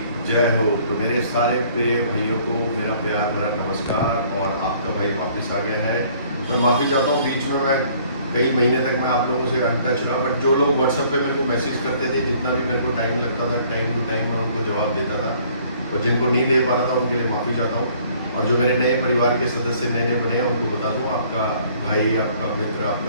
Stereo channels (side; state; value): both; inverted; correlation -0.58